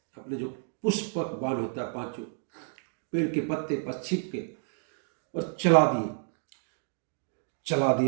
अपने जो पुष्पक बाण होता है, पांचों पेड़ के पत्ते पर छिप के और चला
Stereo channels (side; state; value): left; silent; 58 dB below the other